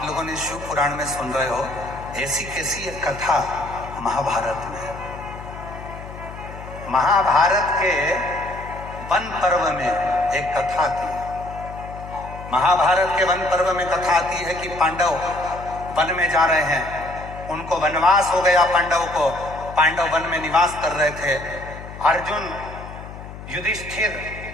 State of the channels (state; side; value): noise; left; hum, 13 dB below the sound